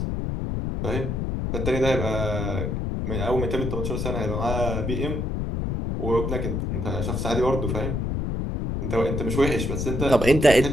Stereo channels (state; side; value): noise; left; rumble, 1 dB below the sound